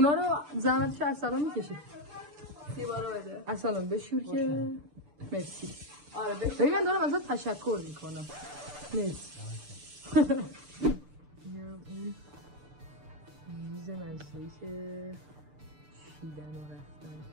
رو زحمتش ارسلان میکشه. سیوا رو بده ارسلان بشور که مرسی. آره بشور. ببین من دارم ازت تشکر میکنم. مرسی. اینم اون میز منزلی که چیدن و رفتن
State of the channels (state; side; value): late; left; 6.8 ms